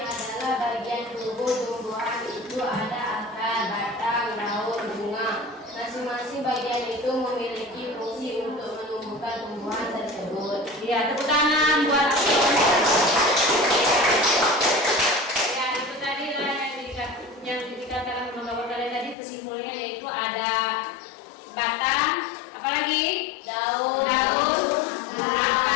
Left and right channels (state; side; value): drops out; right; at 19.2 s